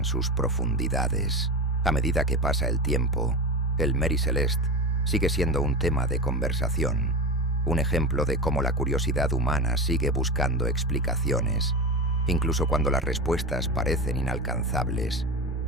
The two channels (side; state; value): both; normal; correlation 0.24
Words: sus profundidades. A medida que pasa el tiempo, el Mary Celeste sigue siendo un tema de conversación, un ejemplo de cómo la curiosidad humana sigue buscando explicaciones, incluso cuando las respuestas parecen inalcanzables.